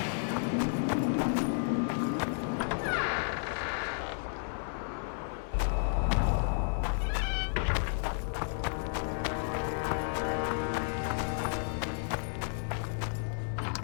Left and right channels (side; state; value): right; silent; digital silence